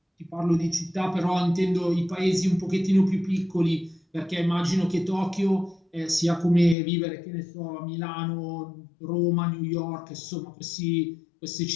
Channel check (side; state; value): right; drops out; at 6.8 s